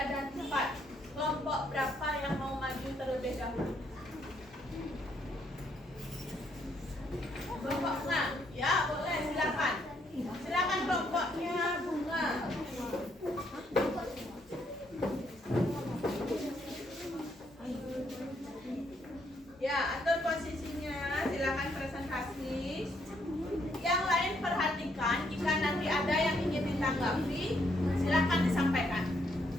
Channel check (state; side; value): normal; both; correlation 0.73